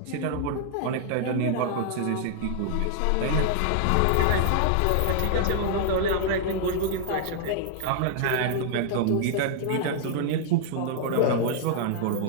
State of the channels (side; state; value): both; different; correlation -0.01